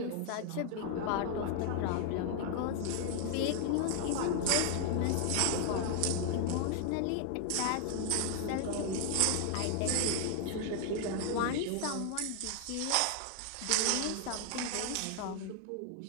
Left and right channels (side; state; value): both; different; correlation 0.00